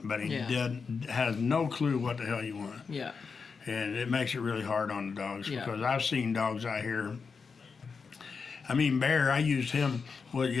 but he Yeah. has no clue what the hell you want. Yeah. And it makes it really hard on the dogs Yeah. because I've seen dogs out here. I mean, Bear, I used him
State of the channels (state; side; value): quieter; right; 5.3 dB